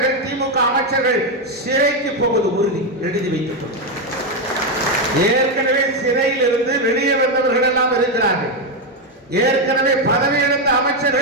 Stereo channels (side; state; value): both; normal; correlation 0.06